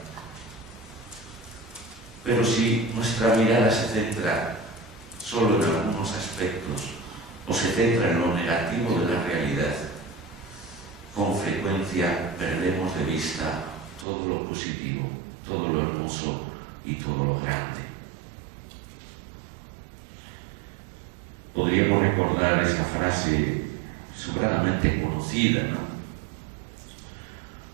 Pero si nuestra mirada se centra solo en algunos aspectos o se centra en lo negativo de la realidad, con frecuencia perdemos de vista todo lo positivo, todo lo hermoso y todo lo grande. Podríamos recordar esa frase sobradamente conocida, ¿no?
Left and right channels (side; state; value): left; drops out; at 14.1 s